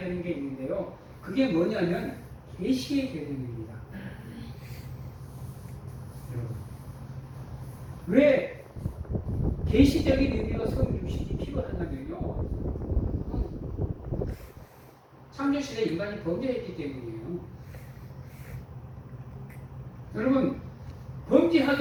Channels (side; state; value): both; identical; correlation 1.00